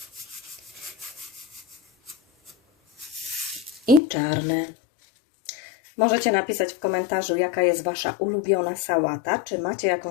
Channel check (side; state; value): right; drops out; at 4.0 s